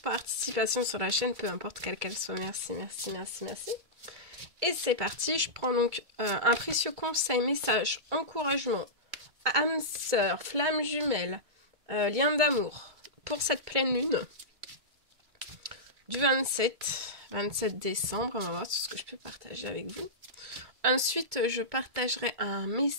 sur la chaîne, peu importe quelle qu'elle soit. Merci. Et c'est parti, je prends donc un précieux conseil, message, encouragement, âme sœur, flamme jumelle, lien d'amour pour cette pleine lune du 27 décembre. On va voir tout ce que je peux partager avec vous. Ensuite, je partagerai un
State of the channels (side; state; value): left; late; 2.3 ms